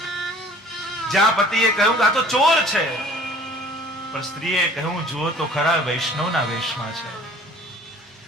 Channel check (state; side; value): normal; both; correlation 0.51